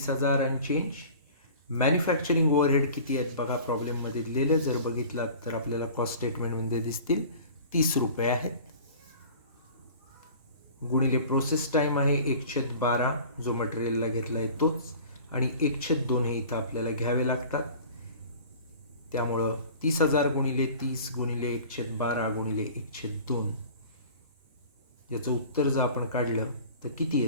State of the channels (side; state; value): both; inverted; correlation -0.43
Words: आणि चेंज. मॅन्युफॅक्चरिंग ओव्हरहेड किती आहेत बघा प्रॉब्लेममध्ये दिलेलं. जर बघितलात तर आपल्याला कॉस्ट स्टेटमेंटमध्ये दिसतील 30 रुपये आहेत. गुणिले प्रोसेस टाईम आहे 1/12 जो मटेरियलला घेतला आहे तोच, आणि 1/2 हे इथं आपल्याला घ्यावे लागतात. त्यामुळं 30,000 गुणिले 30 गुणिले 1/12 गुणिले 1/2 याचं उत्तर जर आपण काढलं तर किती